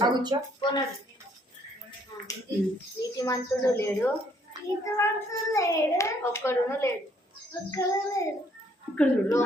నీతిమంతుడు లేడు, ఒక్కడును లేడు.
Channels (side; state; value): both; normal; correlation 0.65